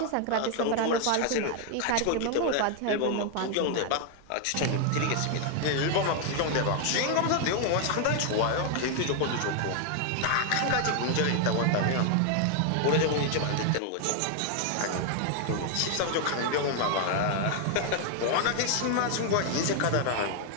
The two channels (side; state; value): both; different; correlation 0.00